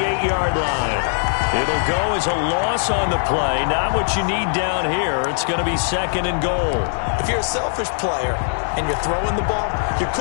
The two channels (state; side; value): silent; right; digital silence